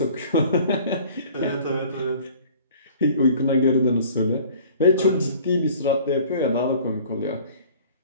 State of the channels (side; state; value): both; inverted; correlation -0.50